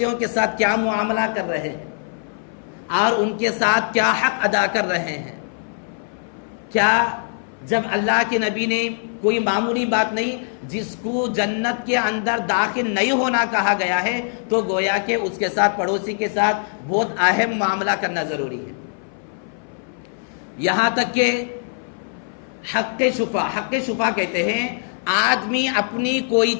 کے ساتھ کیا معاملہ کر رہے ہیں اور ان کے ساتھ کیا حق ادا کر رہے ہیں۔ کیا جب اللہ کے نبی نے کوئی معمولی بات نہیں، جس کو جنت کے اندر داخل نہیں ہونا کہا گیا ہے، تو گویا کہ اس کے ساتھ، پڑوسی کے ساتھ بہت اہم معاملہ کرنا ضروری ہے۔ یہاں تک کہ حق شفا کہتے ہیں، آدمی اپنی کوئی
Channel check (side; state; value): right; silent; 59 dB below the other